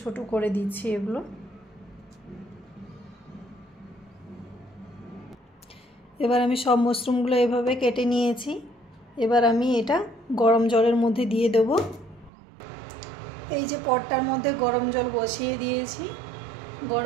ছোট করে দিচ্ছি এগুলো। এবার আমি সব মাশরুমগুলো এভাবে কেটে নিয়েছি। এবার আমি এটা গরম জলের মধ্যে দিয়ে দেব। এই যে পটটার মধ্যে গরম জল বসিয়ে দিয়েছি।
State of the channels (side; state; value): left; drops out; at 12.3 s